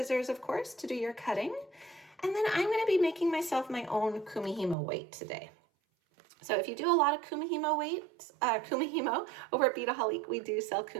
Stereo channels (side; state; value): left; drops out; at 4.8 s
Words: of course, to do your cutting. And then I'm going to be making myself my own Kumihimo weight today. So if you do a lot of Kumihimo weights, Kumihimo over at Beadaholic, we do sell